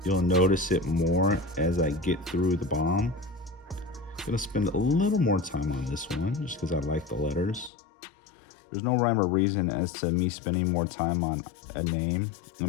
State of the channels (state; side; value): drops out; right; at 7.7 s